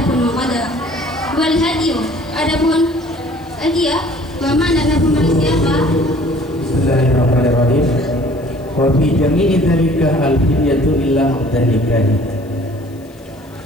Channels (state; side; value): noise; left; hiss, 29 dB below the sound